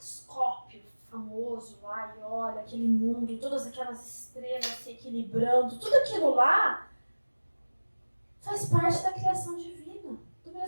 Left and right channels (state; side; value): inverted; both; correlation -1.00